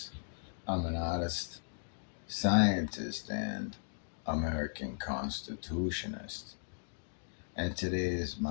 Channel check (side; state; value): right; silent; digital silence